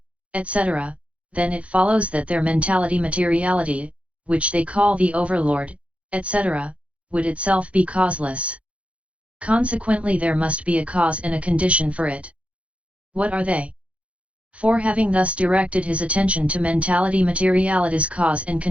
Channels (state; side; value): late; left; 0.062 ms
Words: etc., then it follows that their mentality-materiality, which they call the overlord, etc., would itself be causeless. Consequently there must be a cause and a condition for it. What are they? For having thus directed his attention to mentality-materiality's cause and